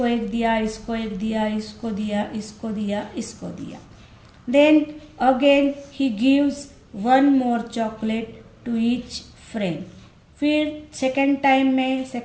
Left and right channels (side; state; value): both; identical; correlation 1.00